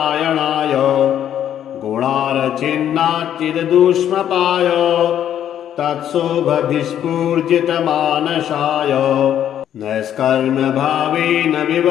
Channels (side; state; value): right; quieter; 10.3 dB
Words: गुणार्चिन्नाच्चिददुष्मपाय तत्शोभभिस्फूर्जितमानसाय नैष्कर्म्यभावेन